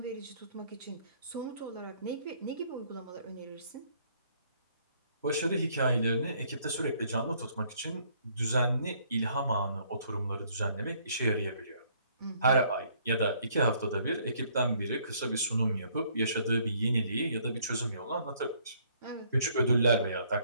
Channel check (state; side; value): inverted; both; correlation -0.64